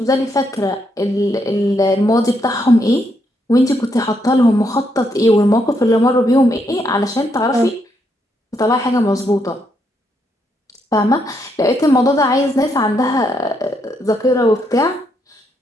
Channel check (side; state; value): both; normal; correlation 0.77